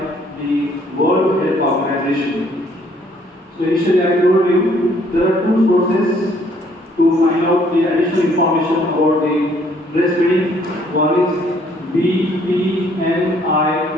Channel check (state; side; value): normal; both; correlation 0.64